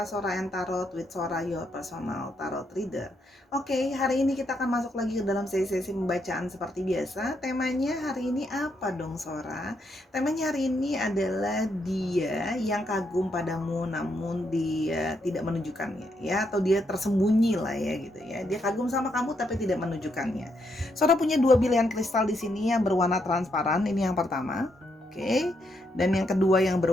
and Tarot with Sora, your personal tarot reader. Oke, hari ini kita akan masuk lagi ke dalam sesi pembacaan seperti biasa. Temanya hari ini apa dong Sora? Temanya hari ini adalah dia yang kagum padamu namun dia tidak menunjukkannya ya, atau dia tersembunyi lah ya gitu ya. Dia kagum sama kamu tapi tidak menunjukkannya. Sora punya dua pilihan kristal di sini yang berwarna transparan. Ini yang pertama. Oke, dan yang kedua yang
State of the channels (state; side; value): normal; both; correlation 0.78